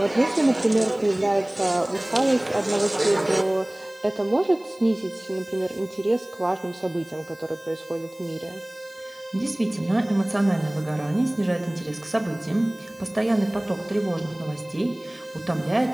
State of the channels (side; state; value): left; noise; hiss, 27 dB below the sound